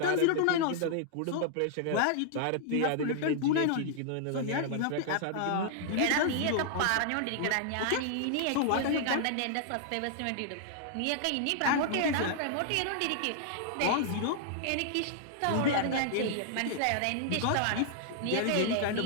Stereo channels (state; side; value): different; both; correlation -0.01